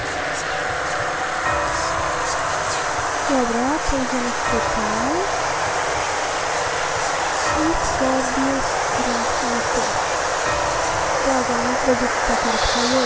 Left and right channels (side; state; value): both; identical; correlation 1.00